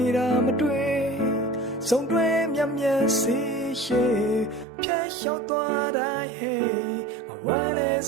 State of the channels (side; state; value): left; drops out; at 4.7 s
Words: တာမတွေ့ဆုံးတွဲမြတ်မြတ်စီရှိဖြတ်လျှောက်သွားတိုင်းဟေးငါဝမ်းနဲ့